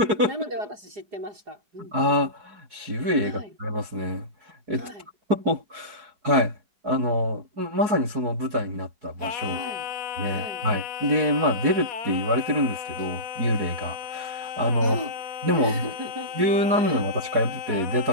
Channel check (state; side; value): late; left; 4.7 ms